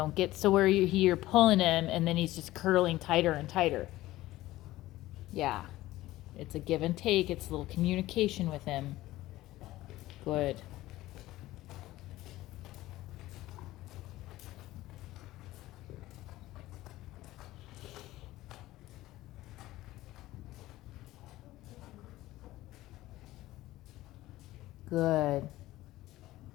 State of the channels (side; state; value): right; quieter; 16.6 dB